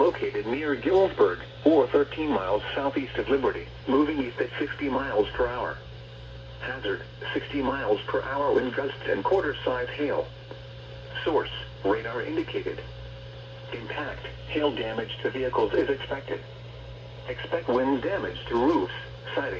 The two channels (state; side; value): identical; both; correlation 1.00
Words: near Gillsburg, or 13 miles southeast of Liberty, moving east at 60 miles per hour. Hazard, 60 miles per hour wind gusts and quarter-size hail. Source, radar indicated. Impact, hail damage to vehicles is expected. Expect wind damage to roofs,